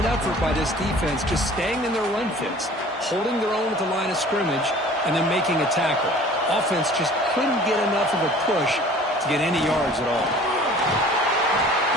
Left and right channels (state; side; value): normal; both; correlation 0.48